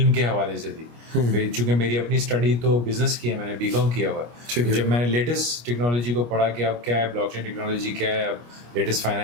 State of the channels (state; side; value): late; left; 25 ms